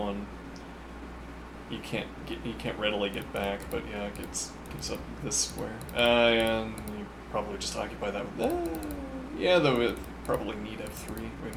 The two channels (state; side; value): identical; both; correlation 1.00